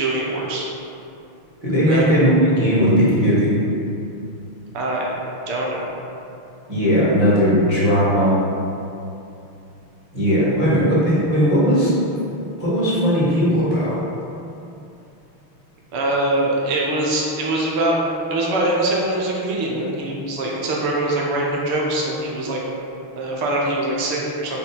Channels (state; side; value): late; left; 6.3 ms